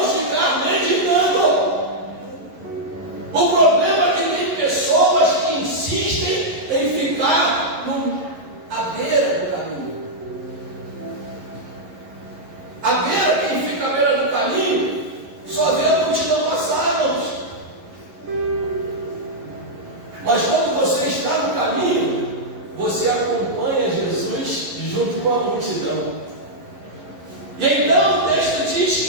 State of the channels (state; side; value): late; left; 11 ms